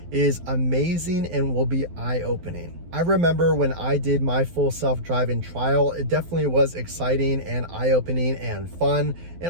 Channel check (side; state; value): left; late; 12 ms